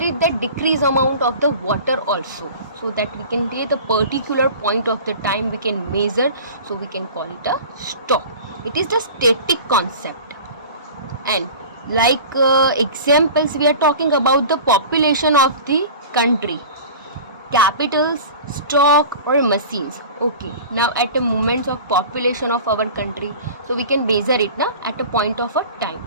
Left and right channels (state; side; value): inverted; both; correlation -0.38